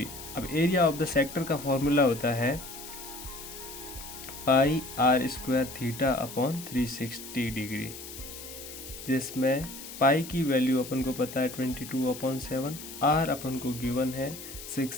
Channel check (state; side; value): noise; left; hiss, 12 dB below the sound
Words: अब एरिया ऑफ द सेक्टर का फॉर्मूला होता है पाई are square theta upon 360 degree, जिसमें पाई की वैल्यू अपन को पता है 22/7, आर अपन को गिवन है 6